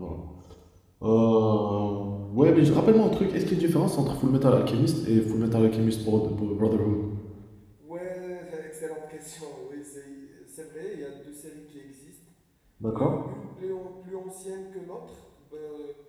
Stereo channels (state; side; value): identical; both; correlation 1.00